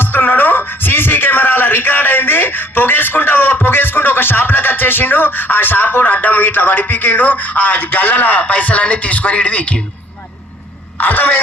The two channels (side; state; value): both; normal; correlation 0.58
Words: సీసీ కెమెరాల రికార్డ్ అయింది, పొగేసుకుంటూ ఒక షాప్లోకి వచ్చేసిండు. ఆ షాప్ అడ్డం ఇట్లా వడిపికిండు, ఆ గల్లల పైసలన్నీ తీసుకొని ఇటు వీకిండు.